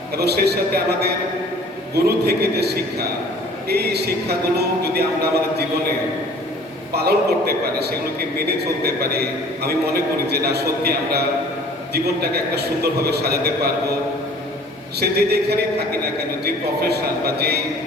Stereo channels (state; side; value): normal; both; correlation 0.50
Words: এবং সেই সাথে আমাদের গুরু থেকে যে শিক্ষা, এই শিক্ষাগুলো যদি আমরা আমাদের জীবনে পালন করতে পারি, সেগুলোকে মেনে চলতে পারি, আমি মনে করি যে না সত্যি আমরা জীবনটাকে একটা সুন্দরভাবে সাজাতে পারবো। সে যে যেখানেই থাকি না কেন, যে প্রফেশন বা যেই